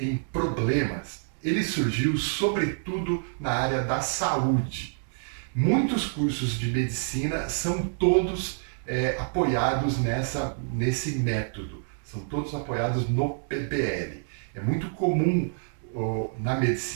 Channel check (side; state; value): left; silent; digital silence